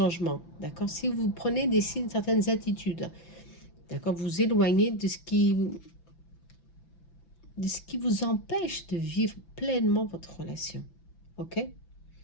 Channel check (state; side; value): late; right; 5.9 ms